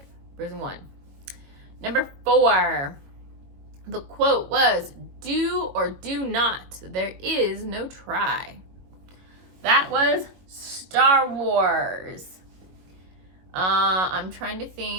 Frozen 1. Number 4, the quote was, do or do not, there is no try. That was Star Wars. I'm trying to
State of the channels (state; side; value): late; left; 21 ms